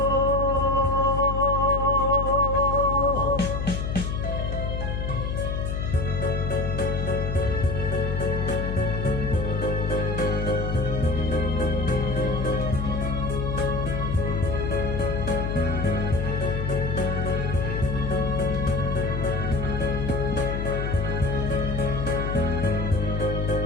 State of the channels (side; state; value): left; noise; hum, 2 dB below the sound